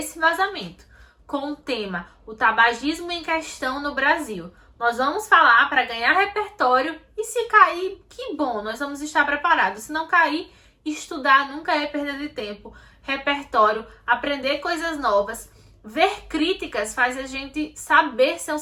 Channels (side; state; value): both; identical; correlation 1.00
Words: vazamento, com o tema o tabagismo em questão no Brasil. Nós vamos falar para ganhar repertório e se cair, que bom, nós vamos estar preparados. Se não cair, estudar nunca é perda de tempo. Repertório, aprender coisas novas, ver críticas faz a gente saber ser um